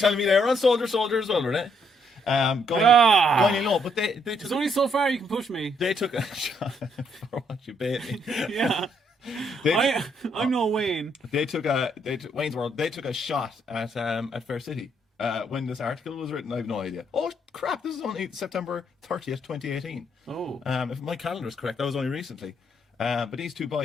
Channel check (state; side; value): normal; both; correlation 0.72